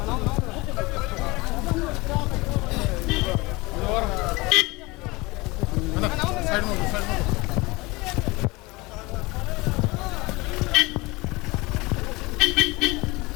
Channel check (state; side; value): quieter; right; 23.4 dB